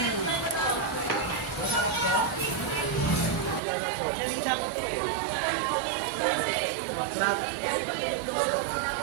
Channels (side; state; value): left; drops out; at 3.6 s